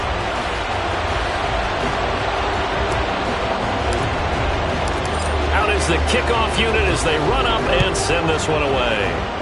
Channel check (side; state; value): both; identical; correlation 1.00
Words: The kickoff unit as they run up and send this one away.